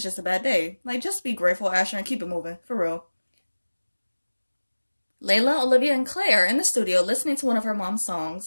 just a bad day. Like, just be grateful, Asher, and keep it moving, for real. Layla, Olivia, and Claire are in the studio listening to one of her mom's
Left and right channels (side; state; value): both; inverted; correlation -1.00